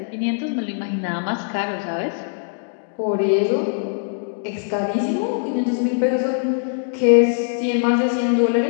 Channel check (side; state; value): right; silent; digital silence